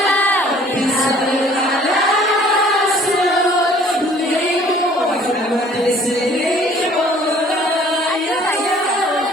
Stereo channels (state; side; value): normal; both; correlation 0.55